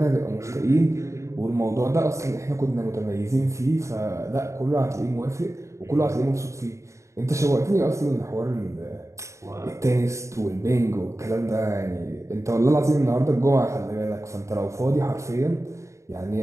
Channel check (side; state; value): left; late; 0.14 ms